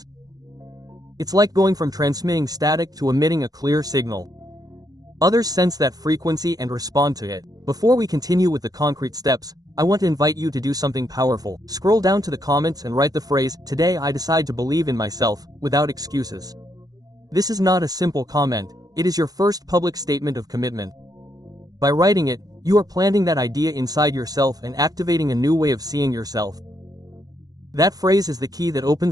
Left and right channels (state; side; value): late; left; 0.18 ms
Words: It's like going from transmitting static to emitting a clear signal. Others sense that frequency and respond to it. Before we continue with the concrete steps, I want to invite you to do something powerful. Scroll down to the comments and write the phrase, "Today I decide to believe in myself," without excuses. This is not a simple comment, it is your first public statement of commitment. By writing it, you are planting that idea inside yourself and activating a new way of seeing yourself. That phrase is the key that